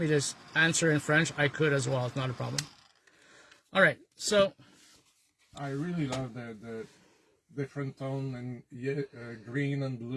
to answer in French, I could as well. It's not a problem. All right. So I really love the different tone and green and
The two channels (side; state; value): both; identical; correlation 1.00